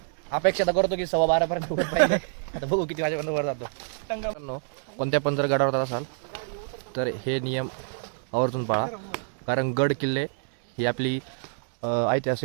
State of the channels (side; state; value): left; silent; digital silence